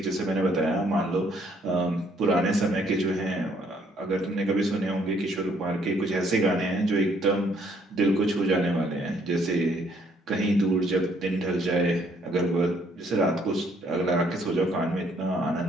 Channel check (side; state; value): both; normal; correlation 0.66